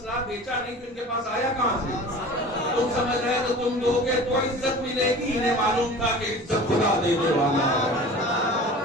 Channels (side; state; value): both; normal; correlation 0.40